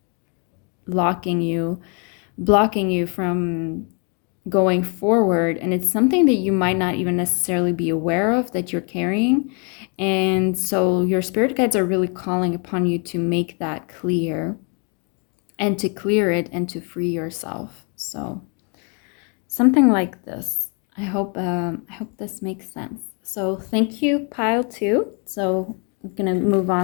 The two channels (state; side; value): quieter; right; 36.6 dB